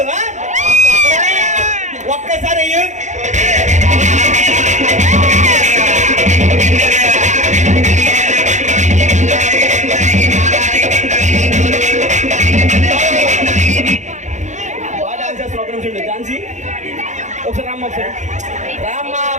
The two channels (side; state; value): left; late; 0.35 ms